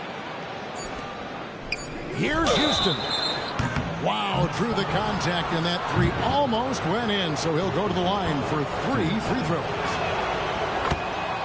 Here's Houston. Wow, through the contact, and that 3 almost went in, so he'll go to the line for 3 free throws.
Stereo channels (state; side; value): identical; both; correlation 1.00